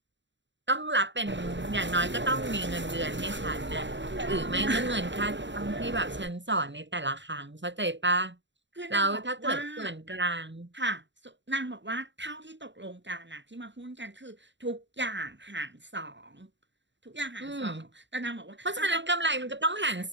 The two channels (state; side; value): late; left; 0.53 ms